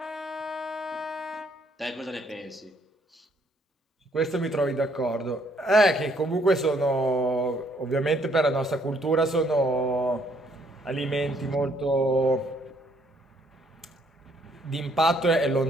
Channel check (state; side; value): normal; both; correlation 0.67